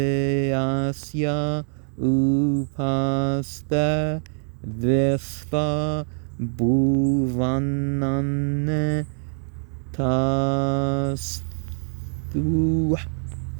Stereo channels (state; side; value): silent; left; 63 dB below the other